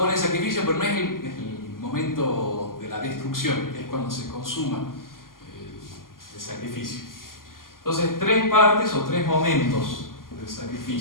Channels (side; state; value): right; late; 0.91 ms